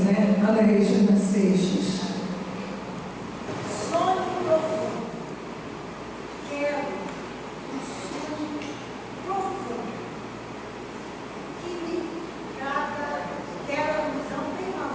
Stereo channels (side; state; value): both; identical; correlation 1.00